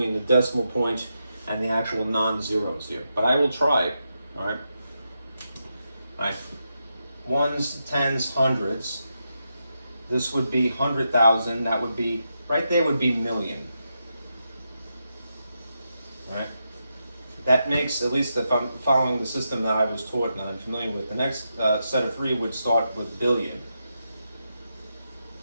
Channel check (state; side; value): inverted; both; correlation -0.85